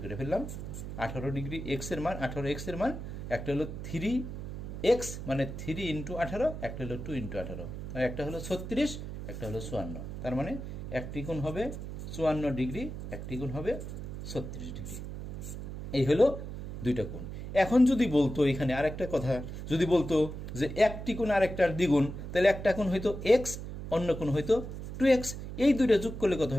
করে ফেললাম। 18 ডিগ্রি এক্সের মান, 18 এক্সের মান, একটা হলো 3x মানে 3 × 18, একটা হলো 2 × 18, একটা হলো 36, একটা হলো 54। তার মানে একটি কোণ হবে 54 ডিগ্রি, একটি কোণ হবে 36 ডিগ্রি। এই হলো দুইটা কোণ। এখন যদি বলতো এখানে আরেকটা কথা, যদি বলতো যে একটি কোণ আরেকটার দ্বিগুণ, তাহলে একটা কোণ হয়তো এক্স, অন্য কোণ হয়তো 2x, এই দুইটা যোগ করলে কত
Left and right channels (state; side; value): noise; right; hum, 8 dB below the sound